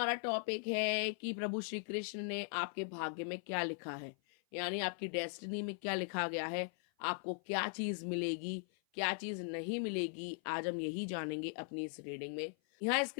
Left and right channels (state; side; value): silent; right; 52 dB below the other